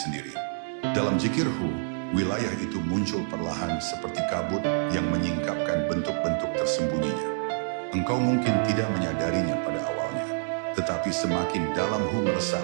Dalam zikirhu, wilayah itu muncul perlahan seperti kabut yang menyingkapkan bentuk-bentuk tersembunyinya. Engkau mungkin tidak menyadarinya pada awalnya, tetapi semakin dalam hu meresap,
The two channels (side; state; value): left; silent; digital silence